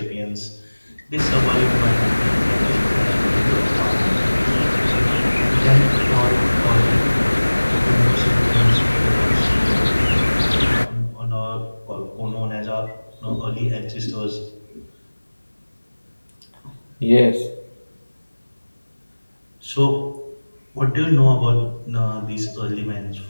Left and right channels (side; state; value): both; inverted; correlation -1.00